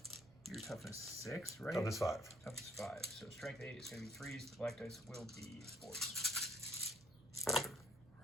your toughness 6, right? Toughness 5. Toughness 5. So strength 8 is going to be 3s. The black dice will be 4s.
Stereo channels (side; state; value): right; noise; hum, 24 dB below the sound